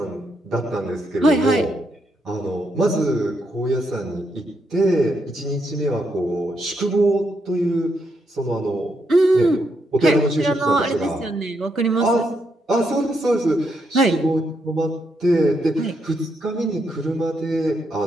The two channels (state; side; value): normal; both; correlation 0.79